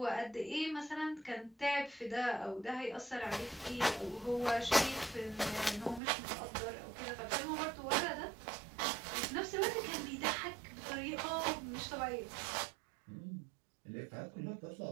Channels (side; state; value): left; drops out; at 6.0 s